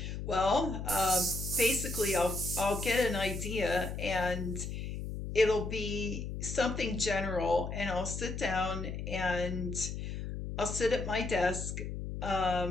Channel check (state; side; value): noise; left; hum, 5 dB below the sound